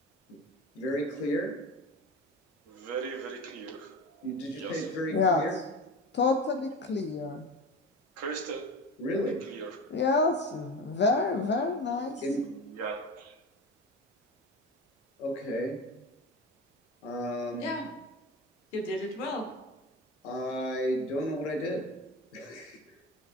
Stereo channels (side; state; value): both; normal; correlation 0.29